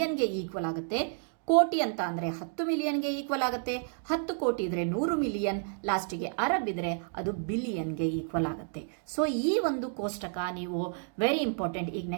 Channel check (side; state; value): left; silent; 57 dB below the other